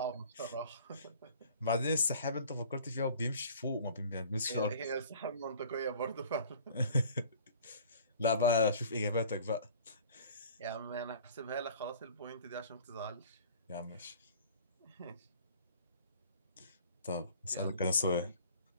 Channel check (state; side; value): inverted; both; correlation -0.48